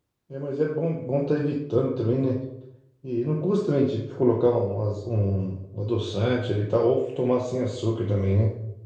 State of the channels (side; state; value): both; identical; correlation 1.00